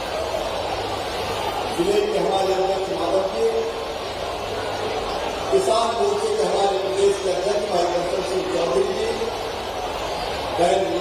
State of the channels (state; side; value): identical; both; correlation 1.00